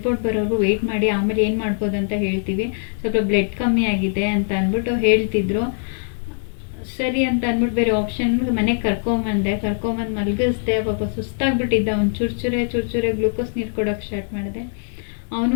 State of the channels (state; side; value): silent; right; digital silence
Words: ಬರೋರು ವೆಯ್ಟ್ ಮಾಡಿ, ಆಮೇಲೆ ಏನು ಮಾಡ್ಬೋದು ಅಂತ ಹೇಳ್ತೀವಿ, ಸ್ವಲ್ಪ ಬ್ಲಡ್ ಕಮ್ಮಿ ಆಗಿದೆ ಅಂತ ಅಂದ್ಬಿಟ್ಟು ಹೇಳ್ತಿದ್ರು. ಸರಿ ಅಂತ ಅಂದ್ಬಿಟ್ಟು ಬೇರೆ ಆಪ್ಷನ್ ಮನೆಗೆ ಕರ್ಕೊಂಬಂದು ಮಲಗಿಸ್ದೆ. ಪಾಪ ಸುಸ್ತಾಗ್ಬಿಟ್ಟಿದ್ದ. ಅವ್ನು ಚೂರ್ಚೂರೆ ಗ್ಲೂಕೋಸ್ ನೀರು ಕೊಡೋಕ್ಕೆ ಸ್ಟಾರ್ಟ್ ಮಾಡಿದೆ. ಅವನು